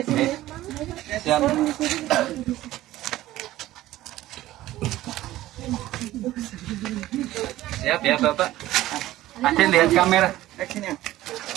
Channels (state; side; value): quieter; left; 15.4 dB